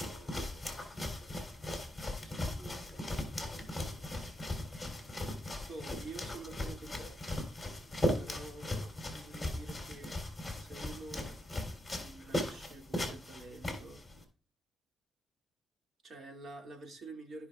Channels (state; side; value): normal; both; correlation 0.81